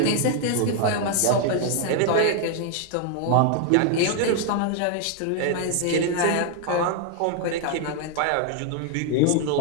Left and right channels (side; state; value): both; different; correlation 0.00